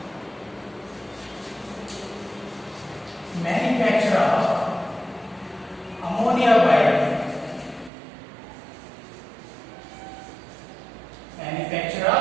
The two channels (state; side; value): drops out; left; at 7.9 s